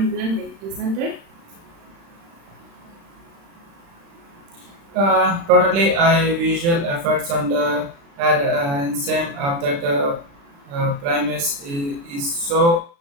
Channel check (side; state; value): left; late; 35 ms